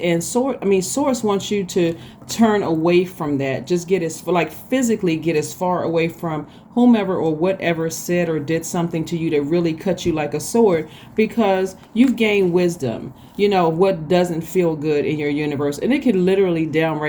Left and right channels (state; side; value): identical; both; correlation 1.00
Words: Source wants you to turn away from that. Just physically get as far away from whomever or whatever said or did something to you that really cut you like a sword, because you've gained wisdom. You know what doesn't feel good in your universe, and it can literally